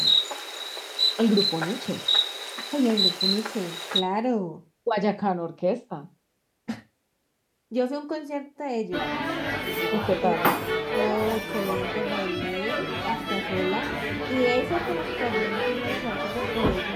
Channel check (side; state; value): both; identical; correlation 1.00